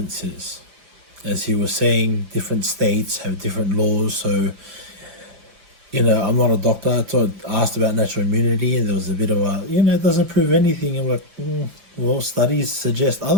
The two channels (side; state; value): left; late; 5.7 ms